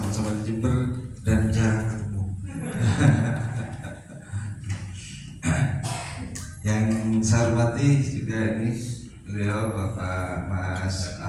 di Jember dan jarang ketemu. Yang saya hormati juga ini beliau Bapak Mas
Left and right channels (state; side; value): identical; both; correlation 1.00